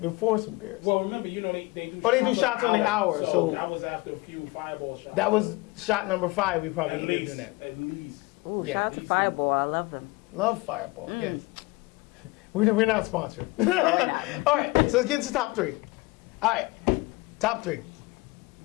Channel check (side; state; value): right; quieter; 22.8 dB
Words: before some beers? Well, remember, you know, they do. Oh, they do shots on the hour, so that was after a few fireball shots. That was shot number 5. We probably At ended up least, doing that. At least. Ooh, Yeah. shout out to Fireball. I love them. Love Fireball. Yes. We're not sponsored. All right, so let's get into top 3. All right, top 3.